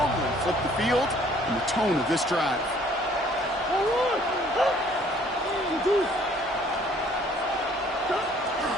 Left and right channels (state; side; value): normal; both; correlation 0.58